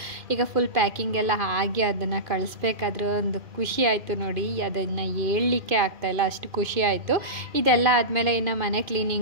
ಈಗ ಫುಲ್ ಪ್ಯಾಕಿಂಗ್ ಎಲ್ಲ ಆಗಿ ಅದನ್ನು ಕಳಿಸ್ಬೇಕಾದ್ರೆ ಒಂದು ಖುಷಿ ಆಯಿತು ನೋಡಿ. ಅದನ್ನು ಹೇಳಲಿಕ್ಕೆ ಆಗ್ತಾಯಿಲ್ಲ, ಅಷ್ಟು ಖುಷಿ ಆಯಿತು. ಇದೆಲ್ಲ ಆದಮೇಲೆ ಇನ್ನು ಮನೆ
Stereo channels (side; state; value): left; late; 2.4 ms